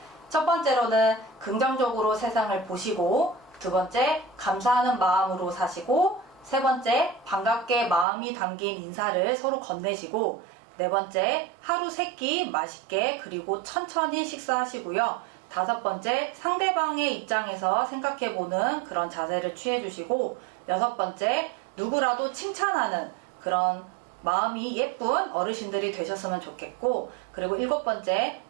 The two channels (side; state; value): left; drops out; at 8.1 s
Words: 첫 번째로는 긍정적으로 세상을 보시고, 두 번째, 감사하는 마음으로 사시고, 세 번째, 반갑게 마음이 담긴 인사를 서로 건네시고, 네 번째, 하루 3끼 맛있게 그리고 천천히 식사하시고요. 다섯 번째, 상대방의 입장에서 생각해보는 그런 자세를 취해주시고, 여섯 번째, 누구라도 칭찬하는 그런 마음이 예쁜 어르신들이 되셨으면 좋겠고, 그리고 일곱 번째,